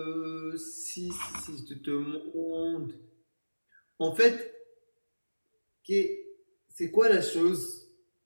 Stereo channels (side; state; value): both; inverted; correlation -1.00